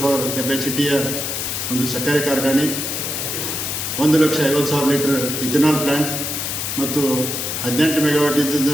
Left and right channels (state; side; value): noise; left; hiss, 3 dB below the sound